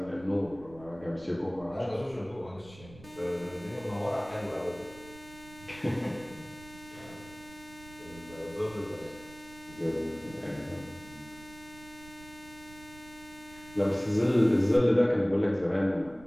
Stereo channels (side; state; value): right; noise; rumble, 20 dB below the sound